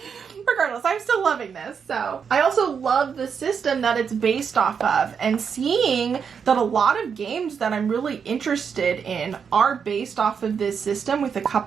Regardless, I'm still loving this. So I also love the system that it's based off of, and seeing that a lot of games that I'm really interested in are based off of this system with a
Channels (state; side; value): quieter; left; 6.6 dB